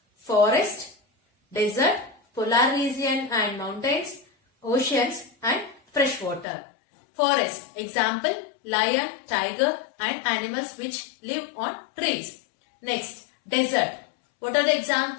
Forest, desert, polar region and mountains, oceans and freshwater. Forest, example, lion, tiger and animals which live on trees. Next, desert. What are the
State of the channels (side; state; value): right; drops out; at 6.5 s